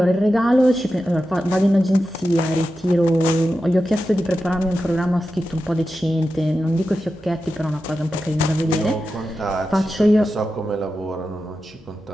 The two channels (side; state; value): both; normal; correlation 0.91